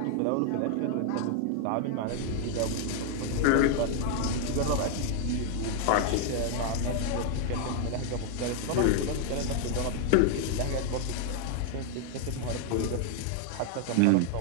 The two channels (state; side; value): different; both; correlation 0.00